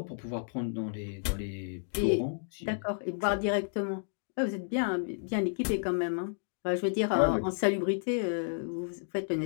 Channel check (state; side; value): silent; right; digital silence